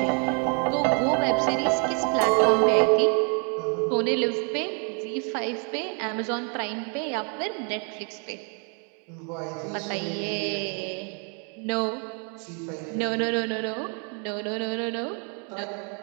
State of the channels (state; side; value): quieter; left; 39.1 dB